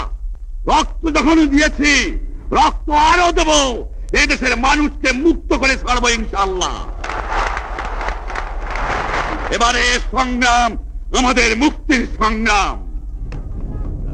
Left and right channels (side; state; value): both; identical; correlation 1.00